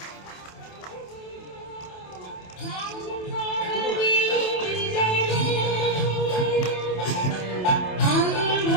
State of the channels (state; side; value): late; right; 27 ms